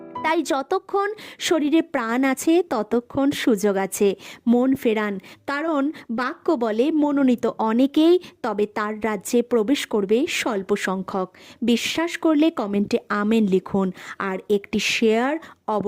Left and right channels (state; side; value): identical; both; correlation 1.00